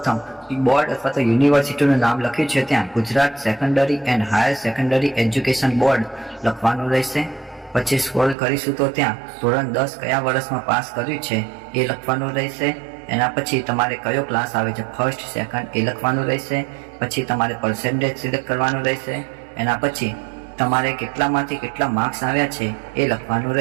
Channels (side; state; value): left; drops out; at 8.3 s